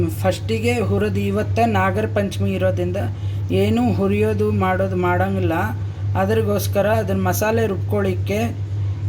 ಫಸ್ಟಿಗೆ ಹುರಿದು, ಇವತ್ತು ನಾಗರ ಪಂಚಮಿ ಇರೋದ್ರಿಂದ ಏನೂ ಹುರಿಯೋದು ಮಾಡೋಂಗಿಲ್ಲ. ಅದ್ರಗೋಸ್ಕರ ಅದನ್ನು ಮಸಾಲೆ ರುಬ್ಕೊಳ್ಳಿಕ್ಕೆ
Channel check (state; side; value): identical; both; correlation 1.00